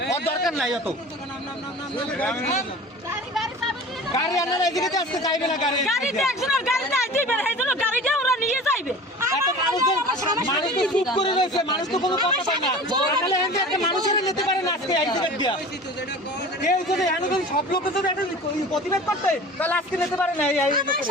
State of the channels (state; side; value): normal; both; correlation 0.39